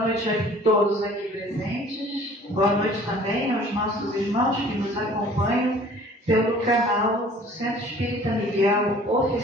a todos aqui presentes. Boa noite também aos nossos irmãos que nos acompanham pelo canal do Centro Espírita Miguel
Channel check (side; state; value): both; normal; correlation 0.51